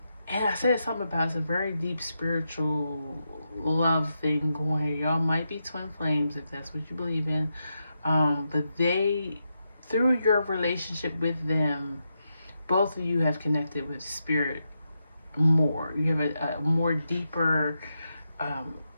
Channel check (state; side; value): inverted; both; correlation -0.85